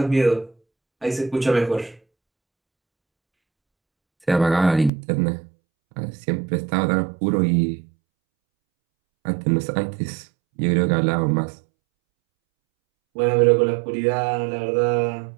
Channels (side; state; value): left; drops out; at 4.9 s